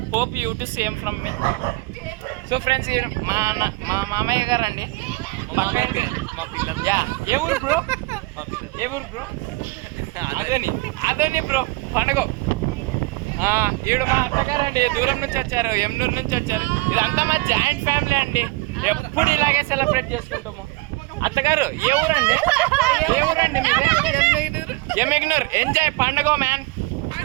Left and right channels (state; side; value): quieter; left; 23.8 dB